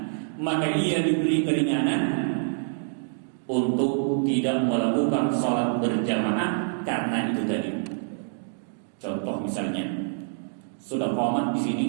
maka ia diberi keringanan untuk tidak melakukan salat berjamaah karena itu tadi. Contoh misalnya sudah qomat di sini,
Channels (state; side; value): silent; left; digital silence